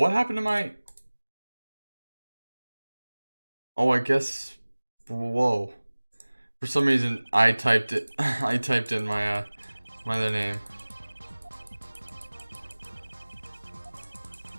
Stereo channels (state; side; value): inverted; both; correlation -1.00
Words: happened to my... Oh, I guess... Whoa. For some reason, I typed it. I typed in my other name.